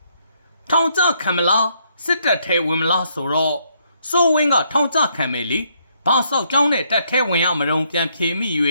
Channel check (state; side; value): inverted; both; correlation -0.72